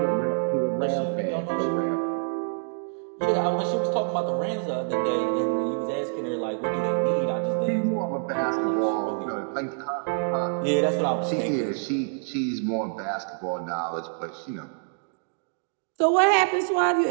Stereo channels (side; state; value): left; silent; digital silence